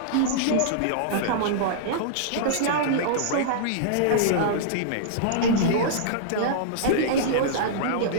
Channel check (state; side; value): different; both; correlation -0.02